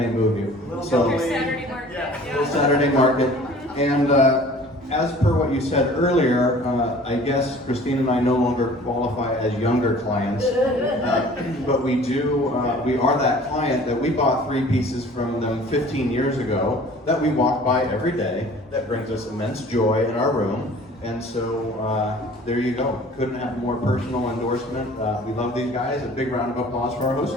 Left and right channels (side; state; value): both; normal; correlation 0.48